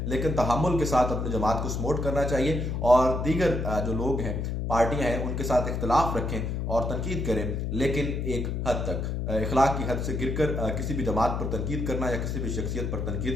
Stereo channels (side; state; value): left; noise; hum, 2 dB below the sound